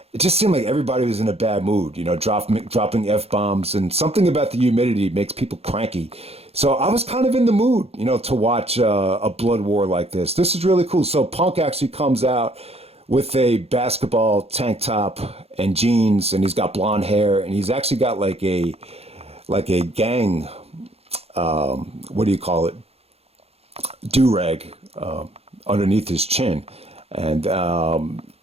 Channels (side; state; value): left; late; 0.29 ms